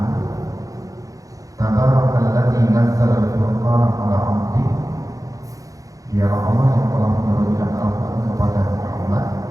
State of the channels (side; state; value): left; late; 0.17 ms